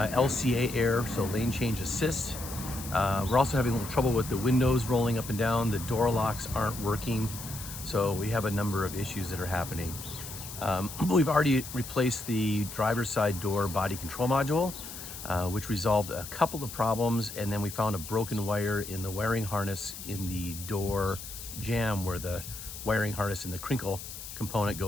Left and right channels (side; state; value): left; noise; hiss, 11 dB below the sound